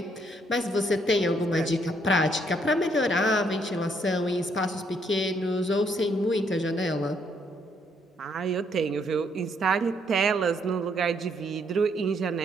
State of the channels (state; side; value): normal; both; correlation 0.70